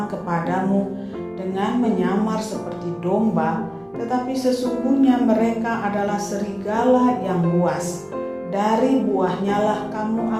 kepadamu dengan menyamar seperti domba, tetapi sesungguhnya mereka adalah serigala yang buas. Dari buahnya lah kamu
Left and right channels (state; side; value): identical; both; correlation 1.00